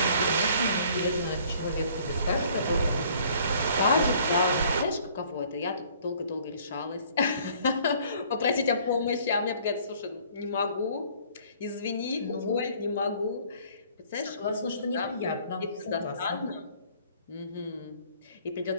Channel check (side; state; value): both; inverted; correlation -0.56